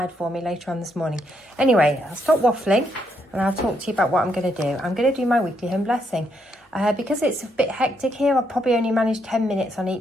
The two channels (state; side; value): normal; both; correlation 0.76